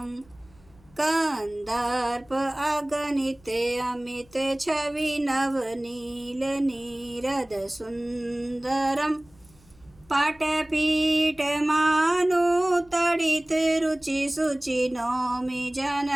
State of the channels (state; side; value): noise; left; hum, 28 dB below the sound